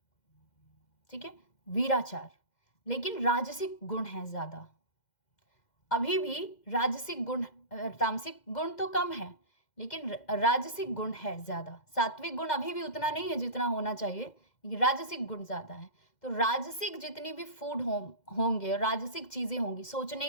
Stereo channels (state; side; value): late; right; 2.1 ms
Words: ठीक है, वीराचार। लेकिन राजसिक गुण है ज़्यादा, अभी भी राजसिक गुण, तामसिक गुण तो कम है लेकिन राजसिक गुण है ज़्यादा। सात्विक गुण अभी भी उतना नहीं है जितना होना चाहिए, राजसिक गुण ज़्यादा है। तो राजसिक जितनी भी फूड होंगे, राजसिक चीज़ें होंगी, सोचने